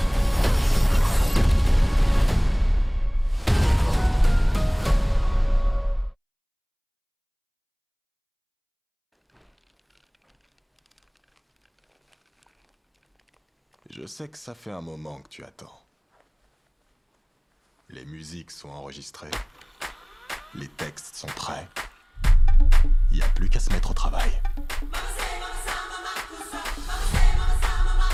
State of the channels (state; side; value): identical; both; correlation 1.00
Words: Je sais que ça fait un moment que tu attends. Les musiques sont enregistrées. Les textes sont prêts. Y a plus qu'à se mettre au travail.